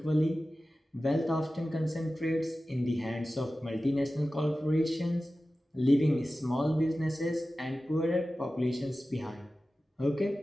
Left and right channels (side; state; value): both; normal; correlation 0.95